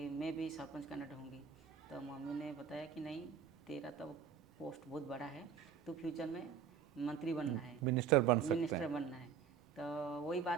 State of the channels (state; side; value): quieter; left; 7.1 dB